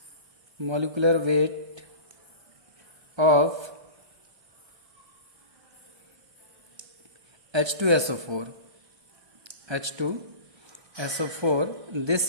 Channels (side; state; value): left; late; 1.3 ms